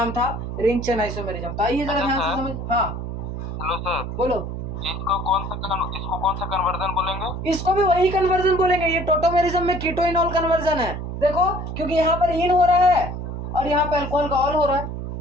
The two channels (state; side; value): noise; right; hum, 6 dB below the sound